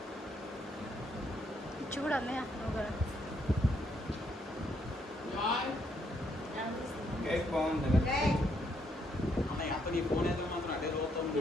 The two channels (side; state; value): both; normal; correlation 0.73